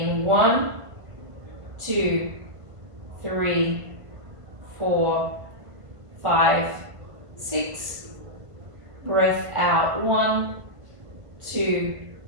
1, 2, 3, 4, 5, 6. Breath out 1, 2,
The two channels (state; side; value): late; left; 1.5 ms